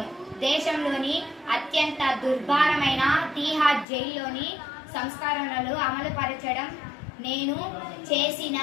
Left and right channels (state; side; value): drops out; right; at 3.9 s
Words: దేశంలోని అత్యంత దుర్భరమైన తీహార్ జైల్లోని సంస్కరణలు అమలుపరచడం నేను చేసిన